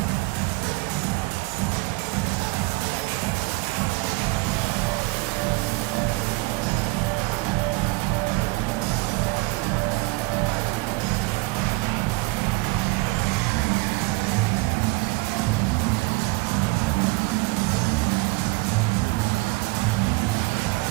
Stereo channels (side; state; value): left; quieter; 23.8 dB